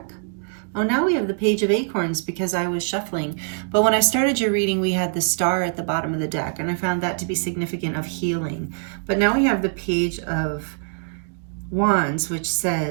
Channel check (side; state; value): left; silent; digital silence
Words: Oh, now we have the Page of Acorns because I was shuffling. But when I started your reading, we had the star at the bottom of the deck, and I found that to be significant of healing. But now we have the Page of Wands, which